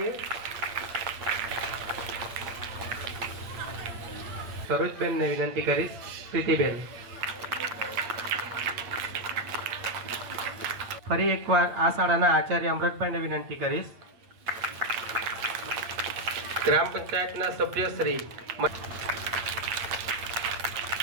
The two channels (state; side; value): late; left; 8.7 ms